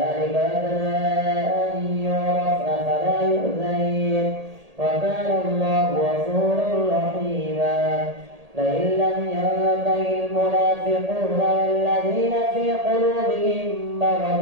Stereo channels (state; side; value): late; left; 1.8 ms